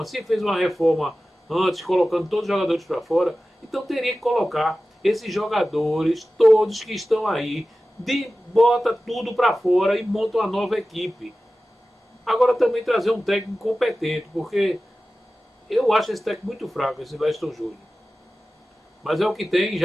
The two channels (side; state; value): both; normal; correlation 0.95